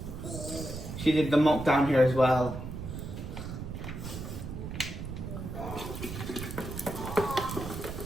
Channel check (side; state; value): right; noise; rumble, 7 dB below the sound